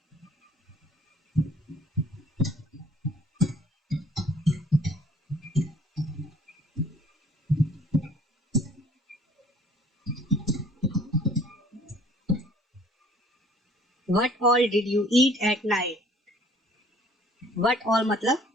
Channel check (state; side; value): normal; both; correlation 0.56